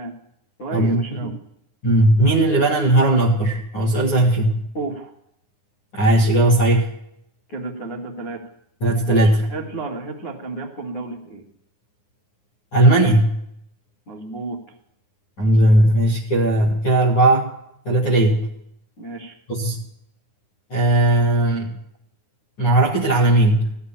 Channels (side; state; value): right; late; 9.7 ms